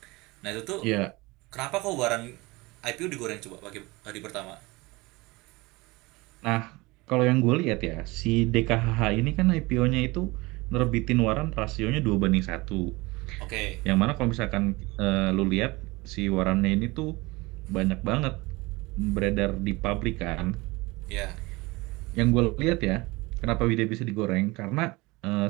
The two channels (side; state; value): left; quieter; 22.9 dB